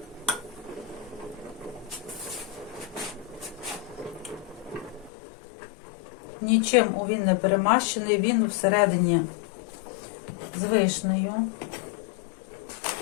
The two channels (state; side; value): drops out; right; at 5.1 s